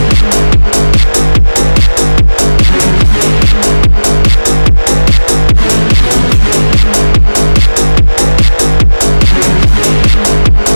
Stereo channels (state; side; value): inverted; both; correlation -1.00